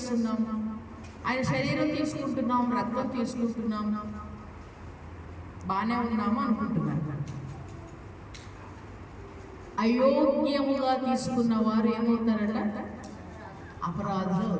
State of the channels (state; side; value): identical; both; correlation 1.00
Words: ఆయన శరీరం తీసుకుంటున్నాం, రక్తం తీసుకుంటున్నాం, బాగానే ఉన్నాము అనుకుంటున్నాను. అయోగ్యముగా తీసుకున్న వారు ఏమవుతారట? అపరాధులు